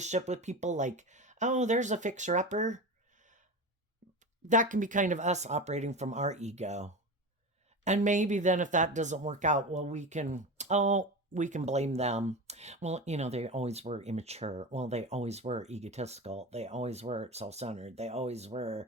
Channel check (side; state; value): both; normal; correlation 0.26